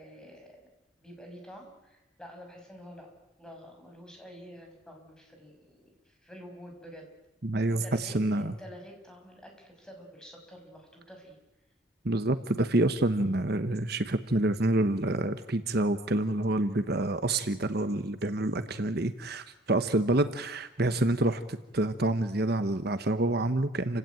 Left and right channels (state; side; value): normal; both; correlation 0.57